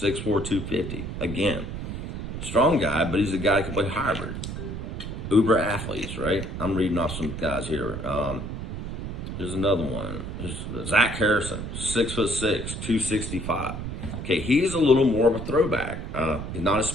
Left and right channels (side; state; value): right; noise; rumble, 6 dB below the sound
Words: 250. Again, strong guy, but he's a guy who can play hybrid. Uber athletes, right? I'm reading off some guys here. Here's another one. Here's Zach Harrison, 6'6", 265. Okay, he's a little more of a throwback. He's not a